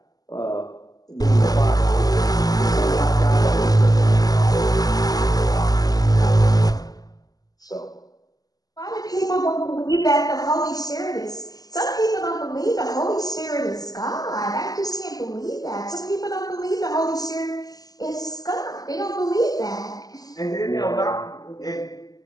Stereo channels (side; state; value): right; late; 0.18 ms